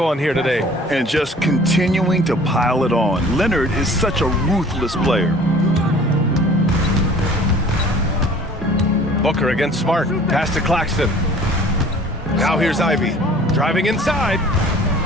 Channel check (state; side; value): normal; both; correlation 0.49